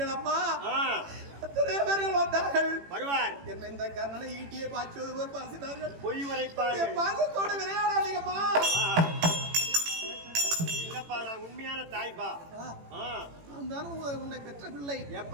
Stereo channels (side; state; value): left; late; 18 ms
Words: அம்மா. எத்தனை பேர்கள் வந்தார்கள் வருவார். என்ன இந்த கர்ணனை ஈட்டியை பாய்ச்சுவது போல் பாசினார்கள். பொய் உரைப்பார்கள். பாசத்தோடு விளையாடாதீங்கம்மா. நான் உண்மையான தாய்பா. உன்னை பெற்ற பிள்ளை